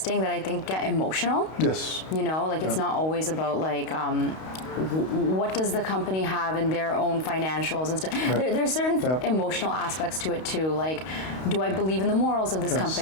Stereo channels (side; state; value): right; late; 32 ms